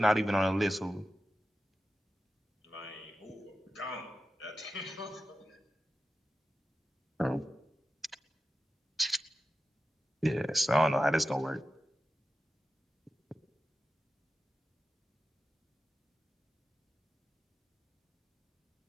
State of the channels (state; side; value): normal; both; correlation 0.92